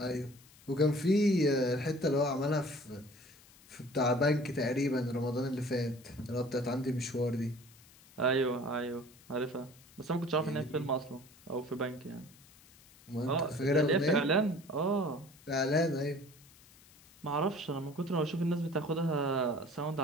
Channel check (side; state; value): left; noise; hiss, 25 dB below the sound